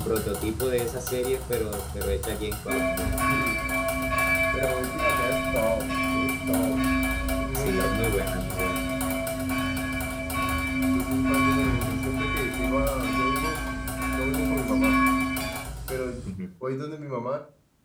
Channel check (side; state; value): both; identical; correlation 1.00